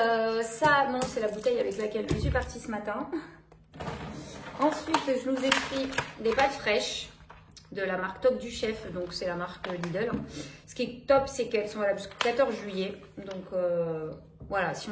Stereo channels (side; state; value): both; identical; correlation 1.00